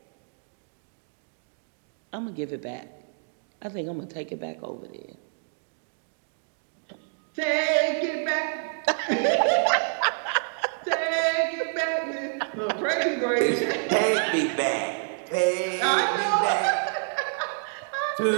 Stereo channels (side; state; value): left; silent; digital silence